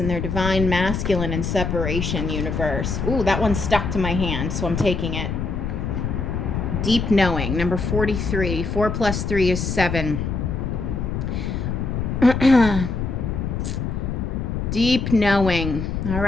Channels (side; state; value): left; noise; rumble, 2 dB below the sound